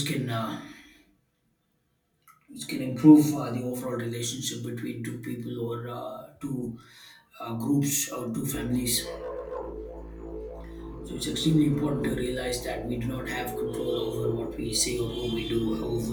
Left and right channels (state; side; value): identical; both; correlation 1.00